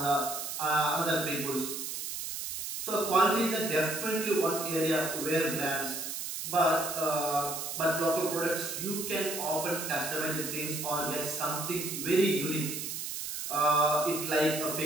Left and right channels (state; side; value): noise; right; hiss, 5 dB below the sound